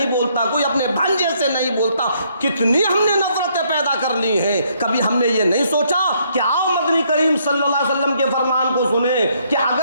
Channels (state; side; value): inverted; both; correlation -0.70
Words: बोलता, कोई अपने भांजे से नहीं बोलता। कितनी हमने नफरतें पैदा कर ली हैं। कभी हमने ये नहीं सोचा कि आओ मदनी करीम सल्लल्लाहु अलैहि वसल्लम के फरमान को सुने कि